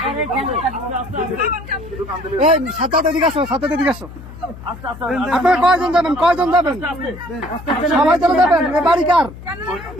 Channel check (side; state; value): left; noise; hum, 15 dB below the sound